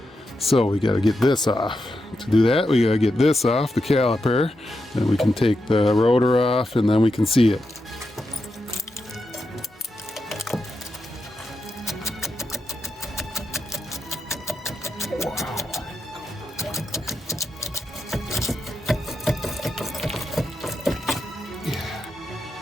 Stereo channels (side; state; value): both; normal; correlation 0.86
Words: So we gotta get this off. To do that, we gotta get this off, the caliper. Then we can take the rotor off and then we can see it.